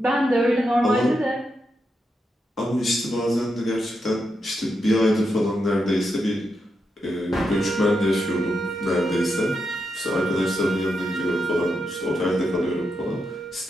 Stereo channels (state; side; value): normal; both; correlation 0.84